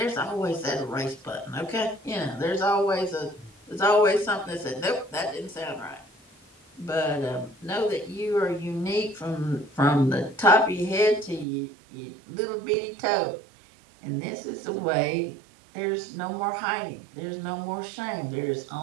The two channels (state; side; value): drops out; left; at 11.5 s